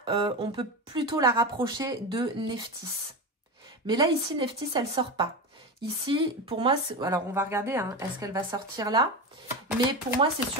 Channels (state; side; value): normal; both; correlation 0.21